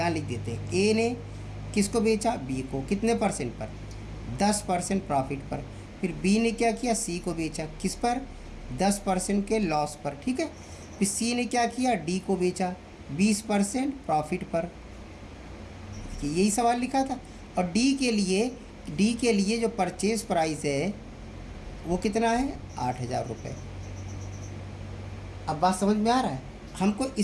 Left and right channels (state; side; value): identical; both; correlation 1.00